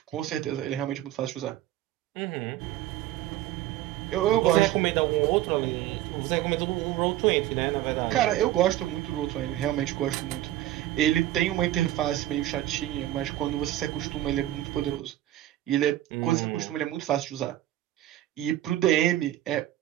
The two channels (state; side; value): quieter; left; 13.9 dB